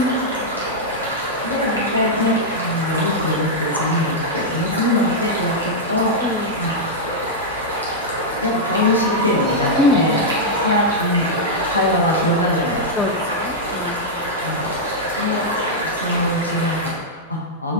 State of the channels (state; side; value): normal; both; correlation -0.06